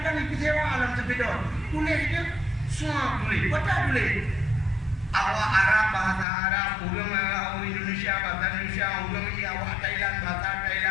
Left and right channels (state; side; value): drops out; right; at 6.2 s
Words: ibu sewa alam sepeda. Tulis dia semua tulis. Baca tulis. Awak Arab bahasa Arab, orang Indonesia bahasa Indonesia, orang awak Thailand bahasa